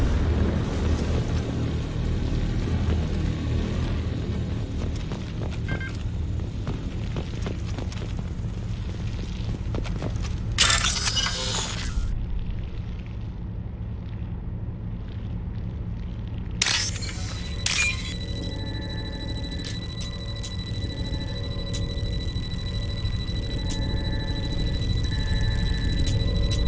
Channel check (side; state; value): both; identical; correlation 1.00